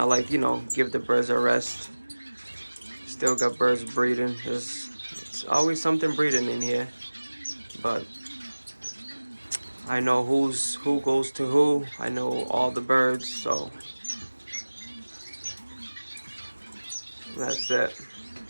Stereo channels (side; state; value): both; inverted; correlation -1.00